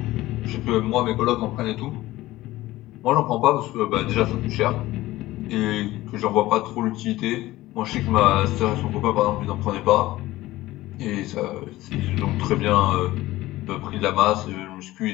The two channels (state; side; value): quieter; right; 17.1 dB